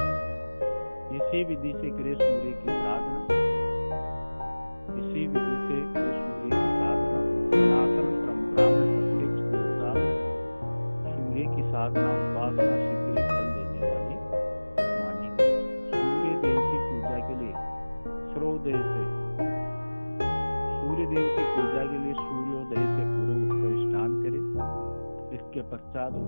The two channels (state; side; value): inverted; both; correlation -1.00